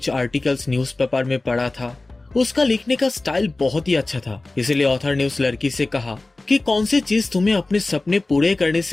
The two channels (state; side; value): quieter; right; 3.1 dB